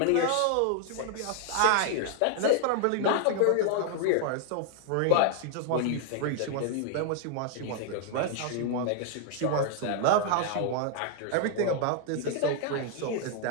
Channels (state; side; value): different; both; correlation 0.00